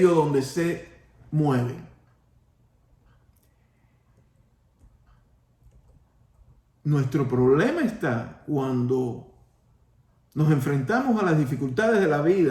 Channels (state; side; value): identical; both; correlation 1.00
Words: donde se mueven. Nuestro problema está cuando nos enfrentamos a las dificultades de la